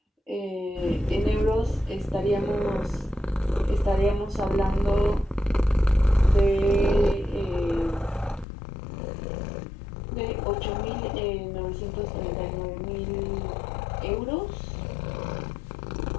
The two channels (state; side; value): drops out; right; at 8.5 s